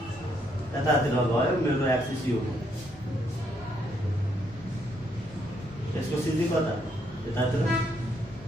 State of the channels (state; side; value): normal; both; correlation 0.73